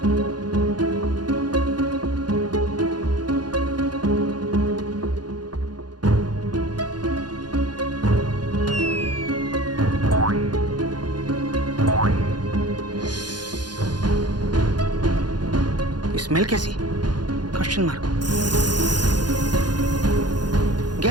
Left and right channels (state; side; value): late; left; 0.70 ms